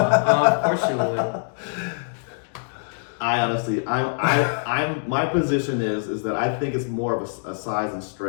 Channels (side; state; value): right; silent; digital silence